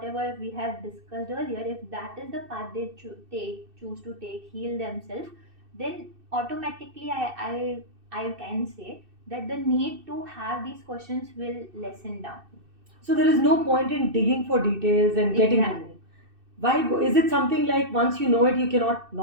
we have discussed earlier, if that is the path they choose to take, heal themselves, then automatically I can say that the need to have these questions will lessen down. So there is no point in digging for details and getting to know. Exactly. Why is it something like once you know it, you cannot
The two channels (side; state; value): left; late; 2.6 ms